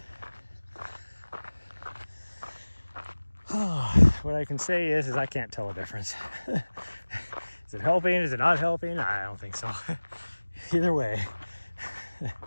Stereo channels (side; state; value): both; inverted; correlation -1.00